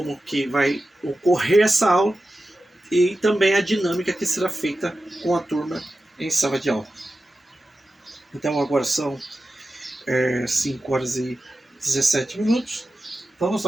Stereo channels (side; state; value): both; normal; correlation 0.93